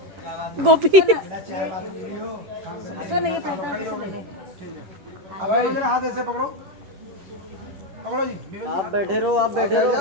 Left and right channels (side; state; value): left; late; 11 ms